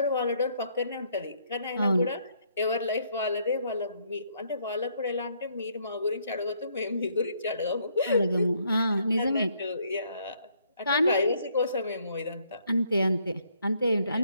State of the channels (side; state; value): both; inverted; correlation -0.69